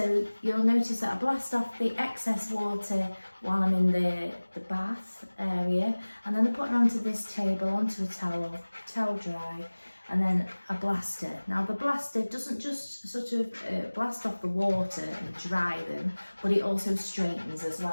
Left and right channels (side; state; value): both; inverted; correlation -1.00